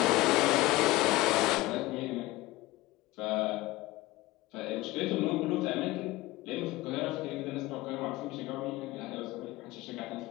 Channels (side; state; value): right; quieter; 19.1 dB